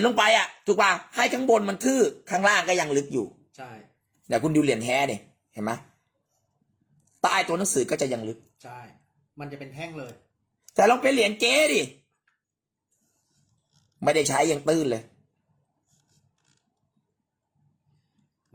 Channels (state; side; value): identical; both; correlation 1.00